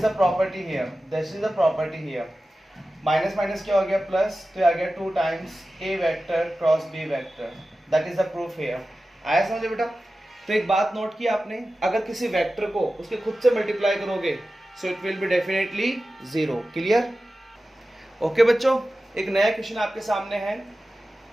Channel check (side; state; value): both; normal; correlation 0.94